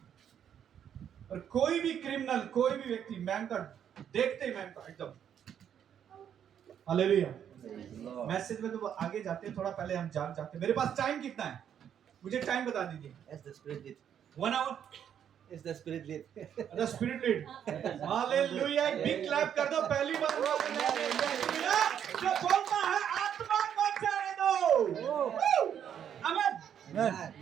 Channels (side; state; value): left; quieter; 9.0 dB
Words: और कोई भी क्रिमिनल, कोई भी व्यक्ति मैम का देखते ही मैम का एकदम hallelujah. Praise the Lord. Message में तो आगे जाते हैं, थोड़ा पहले हम जाग जाते हैं। मेरे पास टाइम कितना है, मुझे टाइम बता दीजिए। As the Spirit lead. 1 आवर As the Spirit lead. The spirit lead. Hallelujah, एक बिग क्लैप कर दो। पहली बार जो बोलता है आत्मा को जाने दो। आमीन। Amen.